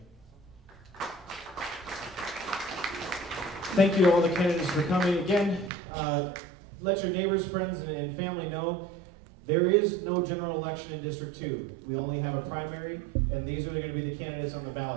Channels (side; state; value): left; drops out; at 5.7 s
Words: Thank you to all the candidates for coming. Again, let your neighbors, friends, and family know there is no general election in District 2. We only have a primary, and these are going to be the candidates on the